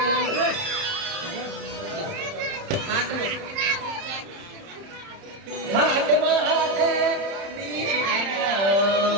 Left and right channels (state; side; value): late; left; 30 ms